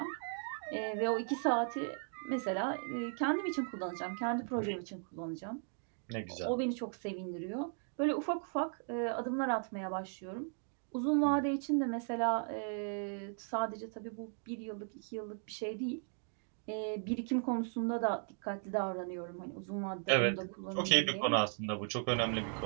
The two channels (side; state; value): left; silent; 53 dB below the other